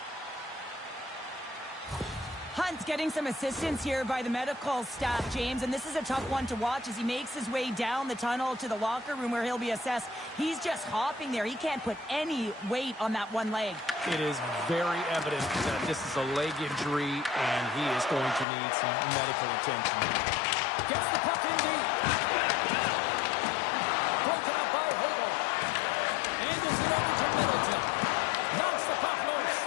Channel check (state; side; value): drops out; right; at 18.4 s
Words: Hunt's getting some assistance here by the medical staff, James, and this is a tough one to watch as he makes his way down the tunnel to the locker room where he'll be assessed. He's just hopping there. He can't put any weight on that one leg. It is very evident that this is a leg injury, and he is going to need some medical attention. Gets the puck in deep. Broken up by Hogel. Angles it over to Middleton. Knocks the puck loose.